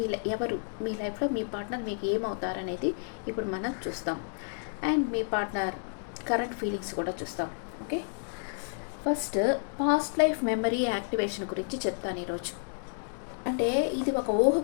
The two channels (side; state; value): right; silent; digital silence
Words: ఎవరు మీ లైఫ్లో మీ పార్ట్నర్ మీకు ఏమవుతారనేది ఇప్పుడు మనం చూస్తాం. And me partner current feelings కూడా చూస్తాం. Okay, first past life memory activation గురించి చెప్తాను ఈరోజు. అంటే ఇది ఒక ఊహ